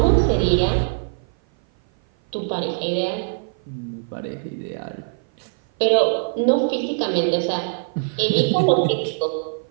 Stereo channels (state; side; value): silent; left; 56 dB below the other